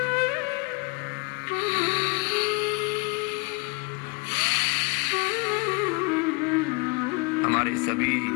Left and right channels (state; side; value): quieter; right; 28.2 dB